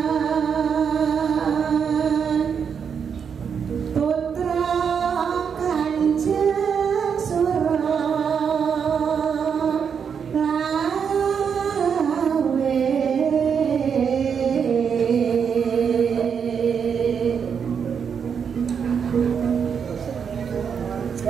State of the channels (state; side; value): quieter; left; 6.9 dB